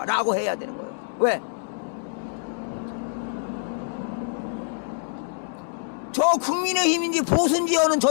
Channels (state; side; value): silent; right; digital silence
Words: 라고 해야 되는 거예요. 왜? 저 국민의힘인지 보수인지 하는 저